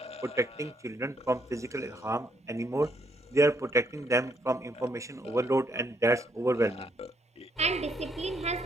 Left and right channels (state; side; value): normal; both; correlation 0.73